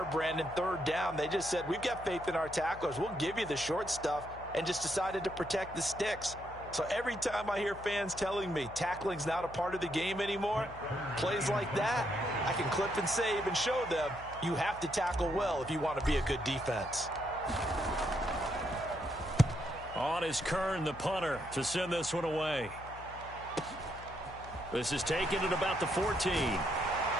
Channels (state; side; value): noise; left; hum, 16 dB below the sound